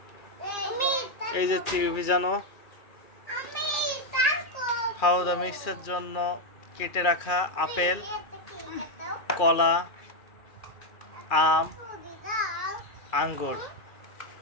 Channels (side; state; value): right; late; 2.4 ms